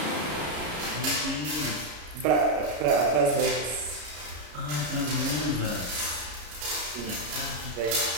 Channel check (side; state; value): left; late; 33 ms